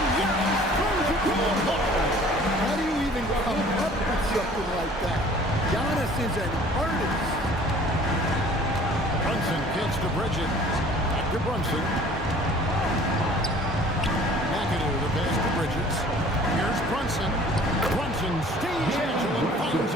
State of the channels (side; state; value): both; normal; correlation 0.50